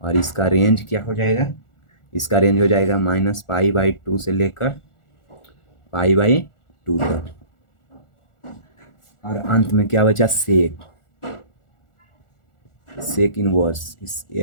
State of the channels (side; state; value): right; late; 1.4 ms